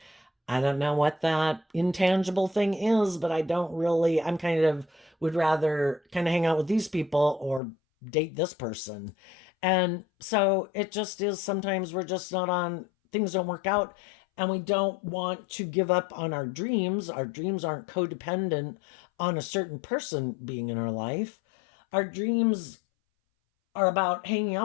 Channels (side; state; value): right; drops out; at 7.6 s